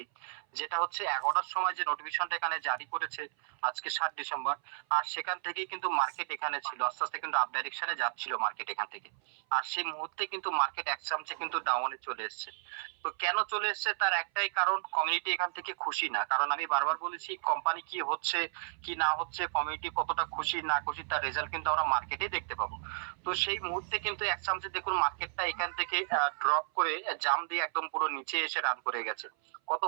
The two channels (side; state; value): left; silent; 56 dB below the other